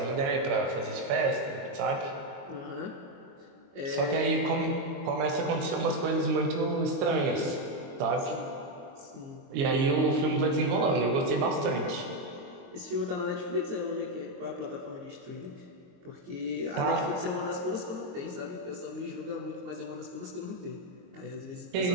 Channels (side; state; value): left; late; 22 ms